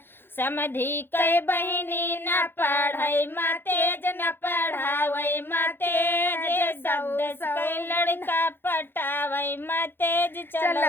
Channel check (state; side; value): late; right; 0.10 ms